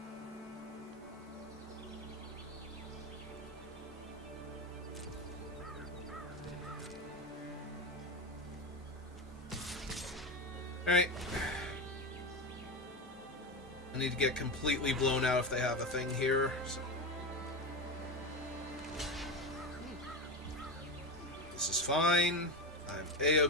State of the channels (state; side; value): normal; both; correlation 0.19